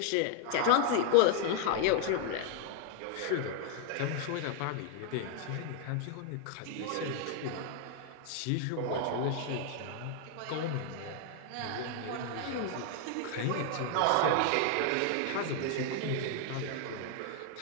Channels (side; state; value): both; different; correlation 0.00